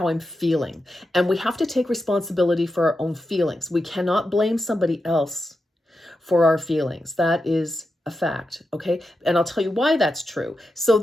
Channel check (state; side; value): normal; both; correlation 0.88